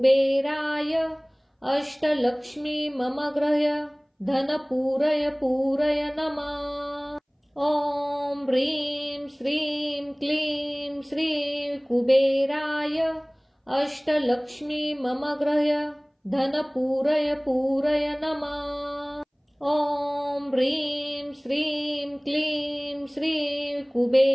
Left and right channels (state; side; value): identical; both; correlation 1.00